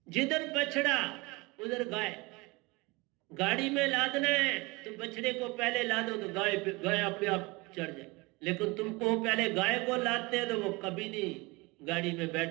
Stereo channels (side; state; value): left; quieter; 24.7 dB